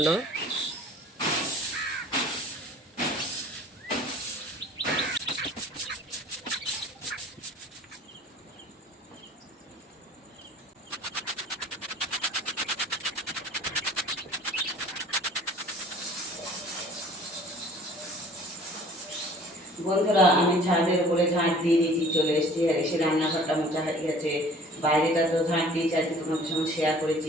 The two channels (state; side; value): normal; both; correlation 0.49